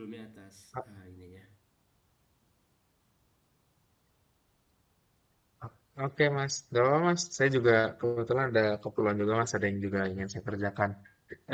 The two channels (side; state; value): both; identical; correlation 1.00